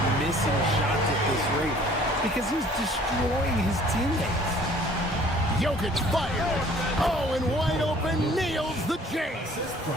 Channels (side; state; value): both; normal; correlation 0.54